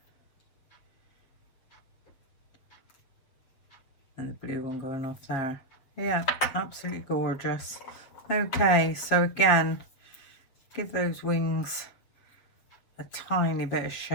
And the blue one going off there. Yeah, absolutely gorgeous. Okay, so again, give those wings a tiny bit of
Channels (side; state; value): right; late; 7.3 ms